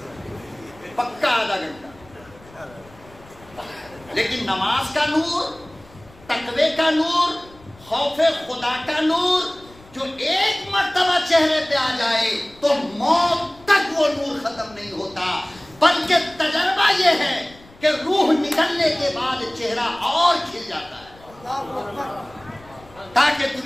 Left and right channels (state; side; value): noise; left; rumble, 24 dB below the sound